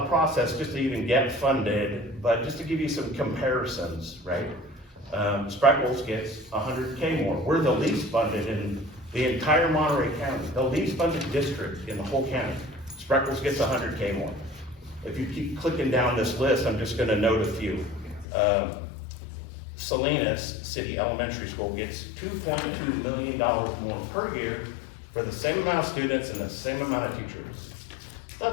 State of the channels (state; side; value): drops out; right; at 18.2 s